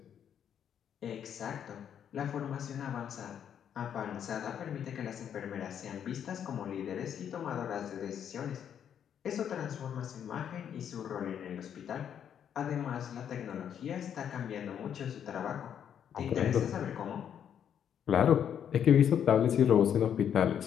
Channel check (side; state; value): right; quieter; 8.9 dB